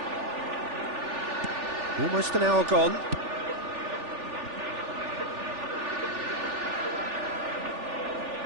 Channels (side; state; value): left; late; 3.4 ms